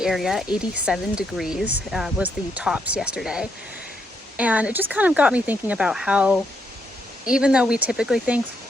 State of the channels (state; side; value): normal; both; correlation 0.77